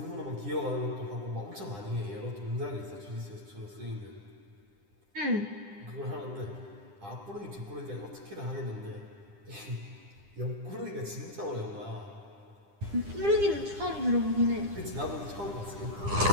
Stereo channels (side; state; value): left; late; 9.9 ms